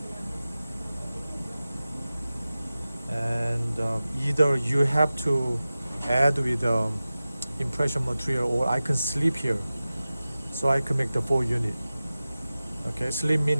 and either you have to add with impression material, or I can sleep here, so I can make the 4 unit. Okay, sleep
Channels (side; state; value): both; inverted; correlation -0.96